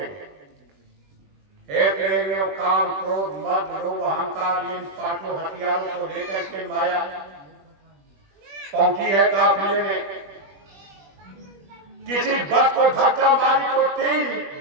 हे प्रेमियों, काम क्रोध मद लोभ अहंकार इन पांचों हथियारों को लेकर के माया पहुंची है काफिले में। किसी बस को धक्का मारी तो 3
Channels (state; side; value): late; left; 20 ms